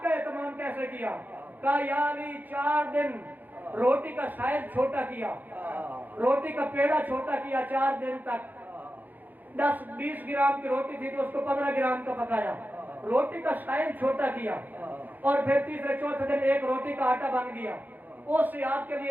کا اہتمام کیسے کیا؟ کہا یا علی 4 دن روٹی کا سائز چھوٹا کیا، روٹی کا پیڑا چھوٹا کیا 4 دن تک. 10-20 گرام کی روٹی تھی تو اس کو 15 گرام کا پکایا، روٹی کا سائز چھوٹا کیا. اور پھر تیسرے چوتھے دن ایک روٹی کا آٹا بن گیا، اس سے آپ کے لیے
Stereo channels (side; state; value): left; late; 0.085 ms